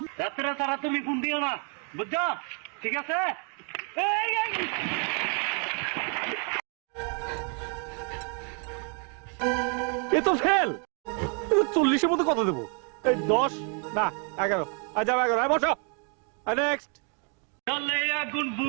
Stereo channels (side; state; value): left; quieter; 39.5 dB